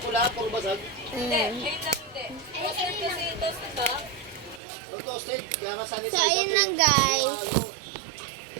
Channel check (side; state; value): left; drops out; at 4.6 s